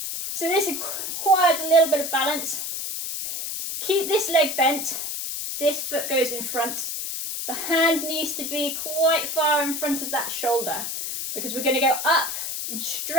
So this requires a little bit of balance. Keep this leg bent. This foot goes in front. The hand needs to be quite far in front of that shoulder because we're going to go up and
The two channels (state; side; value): noise; left; hiss, 4 dB below the sound